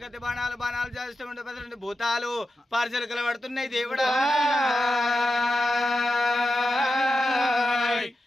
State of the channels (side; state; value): both; normal; correlation 0.90